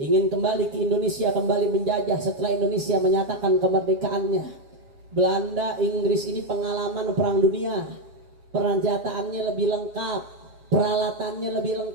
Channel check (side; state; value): left; late; 7.5 ms